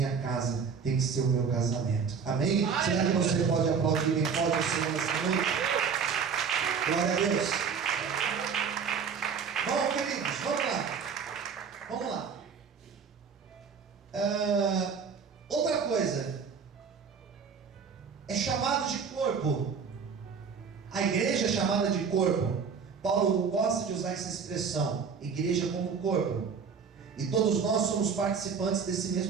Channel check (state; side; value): quieter; left; 6.1 dB